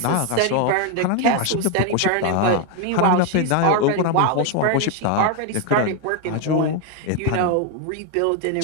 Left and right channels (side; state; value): both; different; correlation 0.01